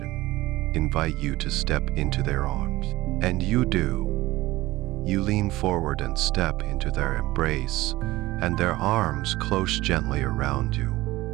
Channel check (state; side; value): quieter; left; 18.3 dB